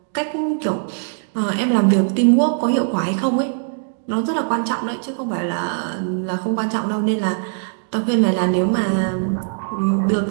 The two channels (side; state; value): left; silent; digital silence